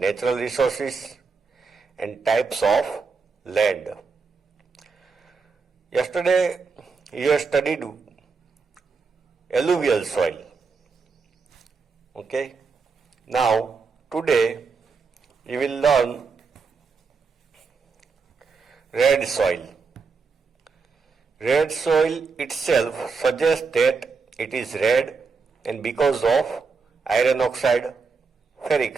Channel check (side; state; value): left; quieter; 4.9 dB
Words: Resources and Types of Land. Yesterday you have studied alluvial soil. Okay. Now today you will learn red soil. Red soil itself suggests that it is red and because of iron oxide,